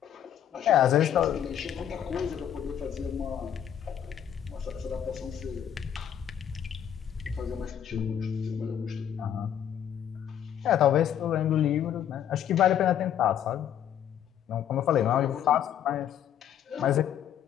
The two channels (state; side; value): quieter; right; 9.7 dB